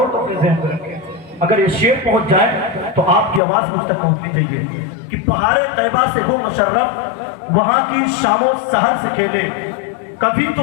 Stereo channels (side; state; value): right; drops out; at 3.4 s